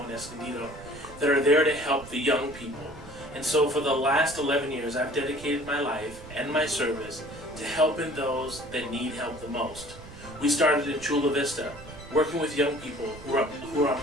in Escondido, that are there to help the young people. And so for the last 11 years, I've dedicated my life and my service to helping those that need help the most. We started in Chula Vista, working with young people who are on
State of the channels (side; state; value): right; noise; rumble, 16 dB below the sound